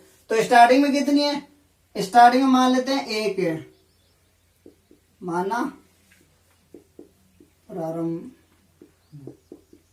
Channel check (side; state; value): both; identical; correlation 1.00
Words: तो स्टार्टिंग में कितनी है, स्टार्टिंग में मान लेते हैं 1 है, माना प्रारंभ